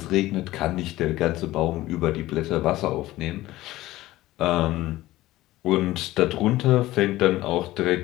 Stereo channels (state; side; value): quieter; right; 16.8 dB